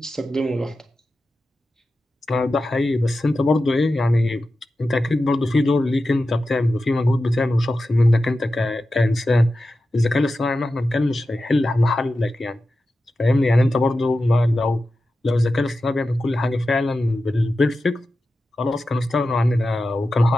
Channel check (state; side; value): normal; both; correlation 0.92